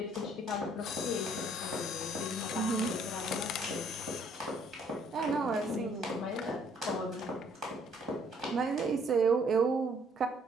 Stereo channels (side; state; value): both; normal; correlation 0.63